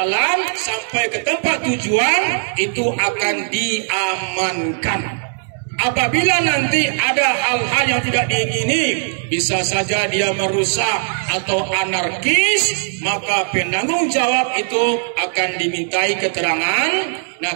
sampai ke tempat tujuan, itu akan diamankan. Apabila nanti ada hal-hal yang tidak diingini, bisa saja dia merusak atau anarkis, maka penanggung jawab itu akan dimintai keterangan. Nah,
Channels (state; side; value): silent; left; 67 dB below the other